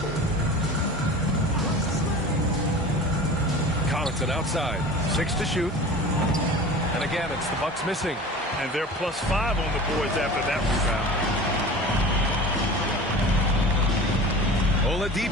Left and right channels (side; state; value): both; normal; correlation 0.37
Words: Connaughton outside. 6 to shoot. And again, it's the Bucks missing. And they're +5 on the boards after that rebound.